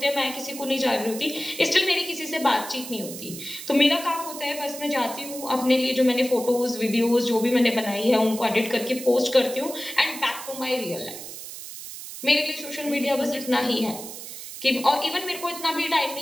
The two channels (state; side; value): noise; right; hiss, 11 dB below the sound